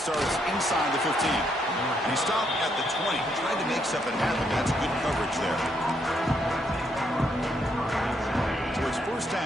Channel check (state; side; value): normal; both; correlation 0.75